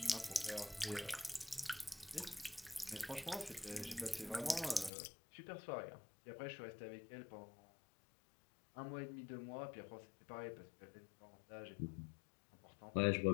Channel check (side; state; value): right; drops out; at 4.9 s